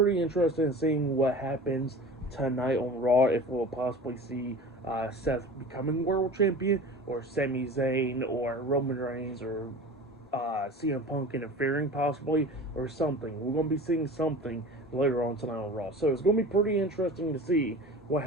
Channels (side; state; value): both; normal; correlation 0.37